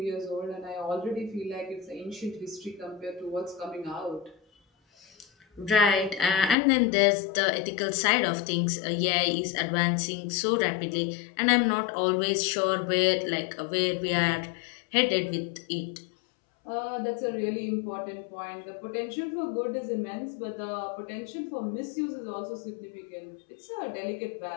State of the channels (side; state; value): right; drops out; at 6.6 s